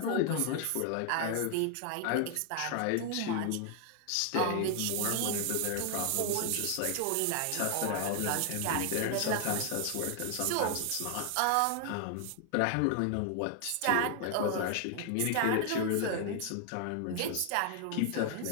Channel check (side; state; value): both; different; correlation 0.00